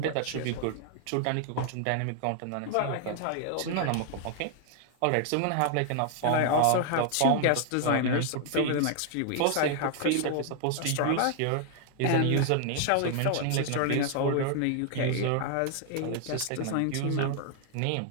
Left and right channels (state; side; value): different; both; correlation 0.00